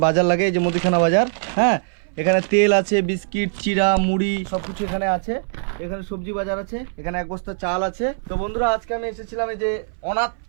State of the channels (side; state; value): left; silent; 60 dB below the other